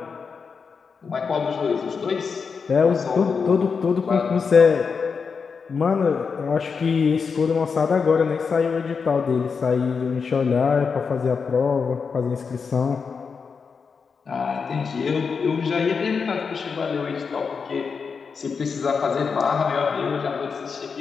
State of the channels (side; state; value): right; quieter; 5.5 dB